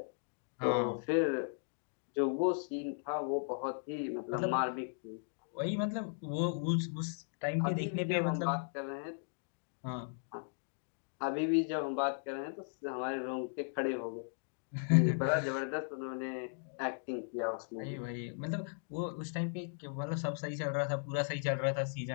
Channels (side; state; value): right; silent; digital silence